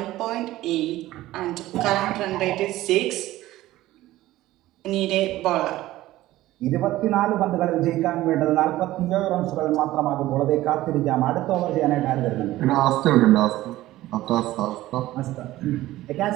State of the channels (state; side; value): quieter; left; 16.0 dB